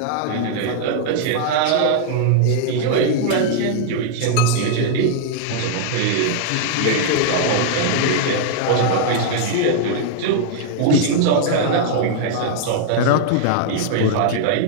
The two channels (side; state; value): both; different; correlation -0.01